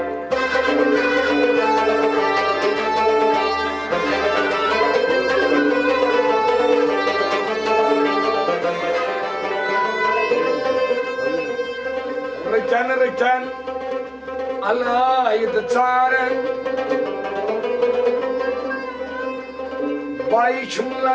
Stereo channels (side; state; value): both; identical; correlation 1.00